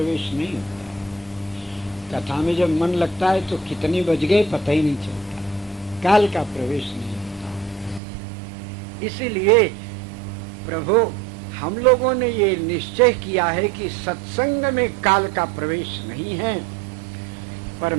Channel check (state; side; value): drops out; left; at 8.0 s